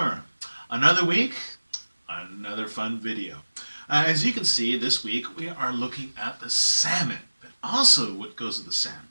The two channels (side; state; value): both; inverted; correlation -1.00